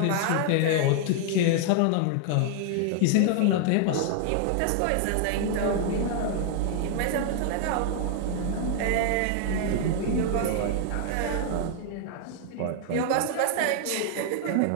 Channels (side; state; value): both; different; correlation 0.00